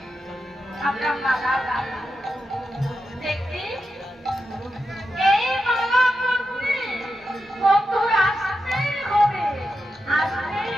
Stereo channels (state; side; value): normal; both; correlation 0.88